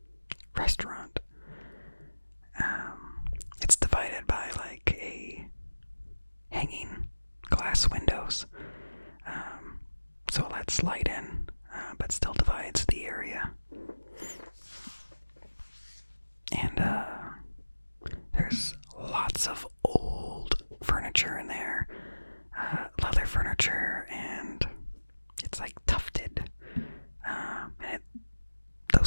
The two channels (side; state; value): both; inverted; correlation -1.00